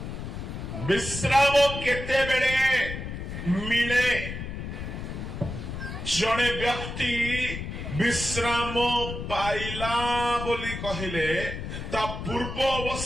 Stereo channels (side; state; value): left; noise; rumble, 7 dB below the sound